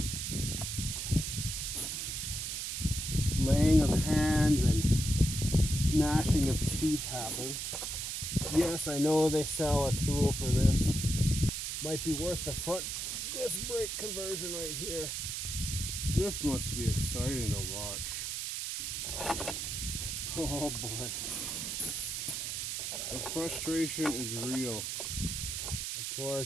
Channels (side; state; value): right; noise; hiss, 3 dB below the sound